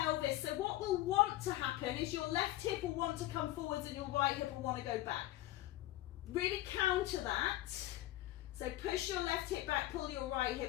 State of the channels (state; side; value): quieter; right; 15.8 dB